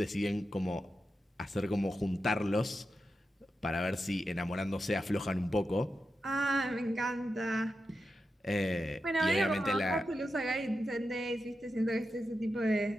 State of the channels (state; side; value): normal; both; correlation 0.89